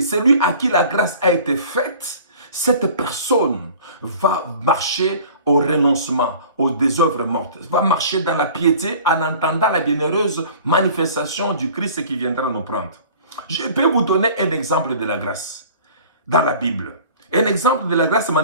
Celui à qui la grâce a été faite, cette personne va marcher au renoncement, des œuvres mortes, va marcher dans la piété en entendant la bienheureuse manifestation du Christ qui viendra nous prendre. Je peux vous donner un exemple de la grâce dans la Bible. Un exemple de la grâce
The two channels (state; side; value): inverted; both; correlation -0.46